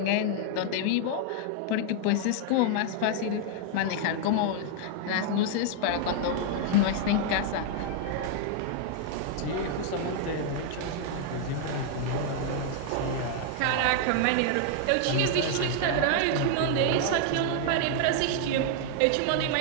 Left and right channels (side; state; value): both; different; correlation 0.00